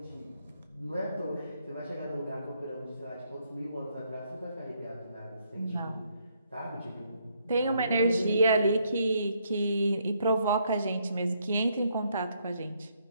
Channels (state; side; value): inverted; both; correlation -0.72